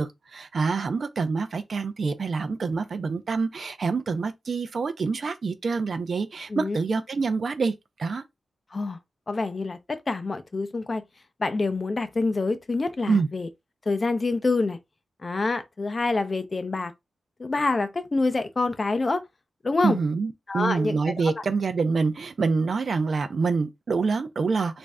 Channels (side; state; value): both; normal; correlation 0.90